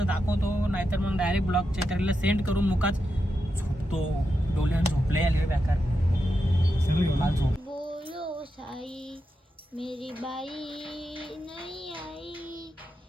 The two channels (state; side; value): normal; both; correlation 0.87